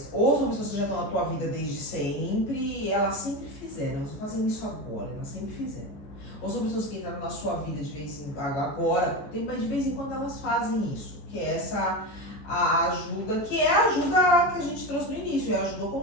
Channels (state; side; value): late; right; 14 ms